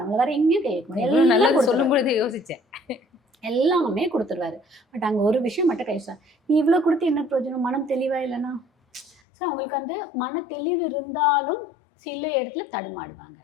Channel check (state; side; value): drops out; right; at 9.2 s